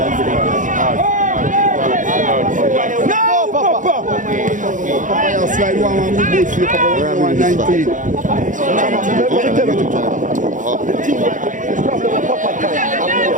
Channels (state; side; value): late; left; 0.37 ms